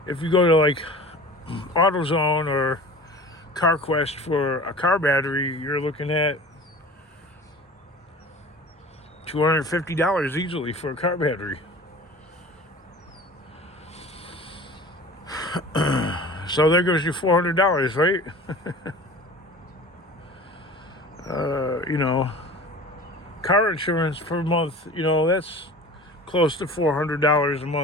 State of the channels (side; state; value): both; normal; correlation 0.39